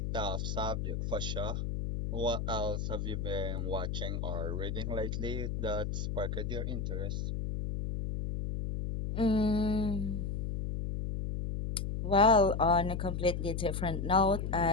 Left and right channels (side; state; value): left; noise; hum, 2 dB below the sound